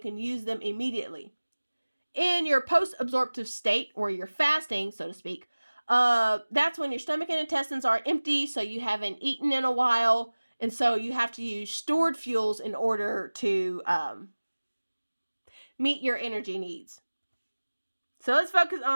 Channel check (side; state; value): both; inverted; correlation -1.00